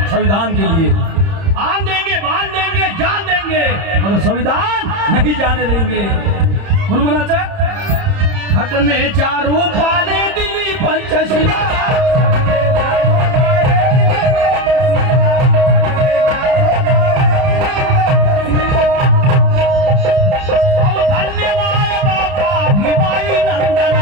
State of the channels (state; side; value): late; left; 30 ms